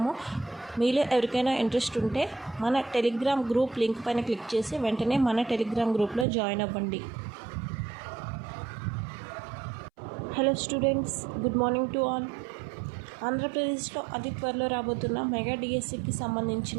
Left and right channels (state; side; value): drops out; left; at 6.2 s